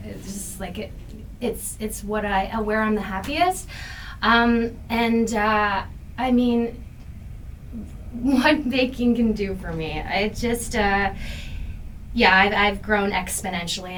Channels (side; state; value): both; identical; correlation 1.00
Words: just like it. It's what where I'm the happiest. I mean, what baking can do for me, I've grown exponentially